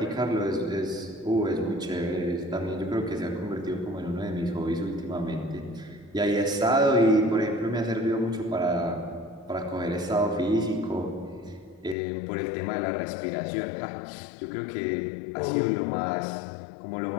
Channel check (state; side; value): drops out; right; at 12.0 s